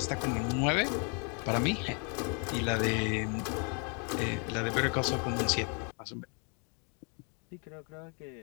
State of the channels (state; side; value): quieter; right; 37.5 dB